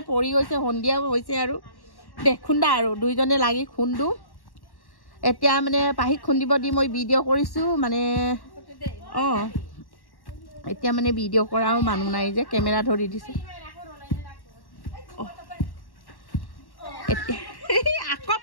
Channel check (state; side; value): late; right; 1.1 ms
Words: পৰি গৈছে সন্ধিয়া হৈছে আৰু খুন্দা আৰু দুইজনে লাগি খুন্দো এতিয়া মানে পাহিক খুন্দিব দি মই ভিডিঅ' কৰিছো মানে এতিয়া মানে ভিডিঅ' কৰাও মানুহ নাই যে কেমেৰা ধৰি দিছে আকৌ